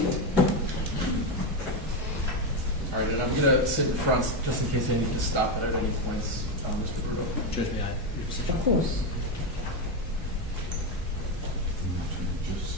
All right, and I'm going to sit in front just in case I need to stop at any points, Mr. Bruno. Judge, may I? Your decision? Of course.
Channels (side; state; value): both; normal; correlation 0.10